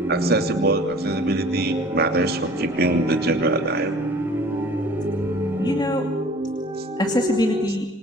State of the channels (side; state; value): both; normal; correlation 0.48